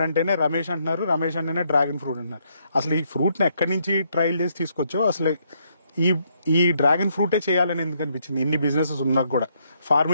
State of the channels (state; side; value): inverted; both; correlation -0.73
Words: అంటేనే రమేష్ అంటున్నారు, రమేష్ అంటేనే డ్రాగన్ ఫ్రూట్ అంటున్నారు. అసలు ఈ ఫ్రూట్ ని ఎక్కడి నుంచి ట్రయల్ చేసి తీసుకొచ్చో, అసలు ఈ డ్రాగన్ ఫ్రూటే చేయాలని ఎందుకు అనిపించింది ఇన్ని బిజినెసెస్ ఉన్నా కూడా